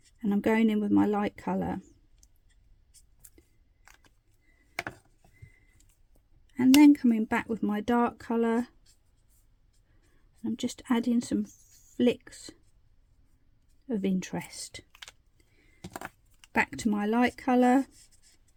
And I'm going in with my light colour. And then coming back with my dark colour. I'm just adding some flicks of interest. Back to my light colour,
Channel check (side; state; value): both; identical; correlation 1.00